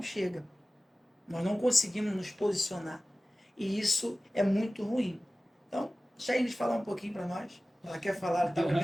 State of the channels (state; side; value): normal; both; correlation 0.97